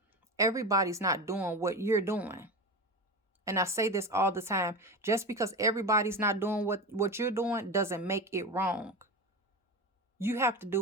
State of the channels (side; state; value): both; normal; correlation 0.24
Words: everybody's not doing what you're doing. And I say this all the time. Just because everybody's not doing what you're doing doesn't make it wrong. You have to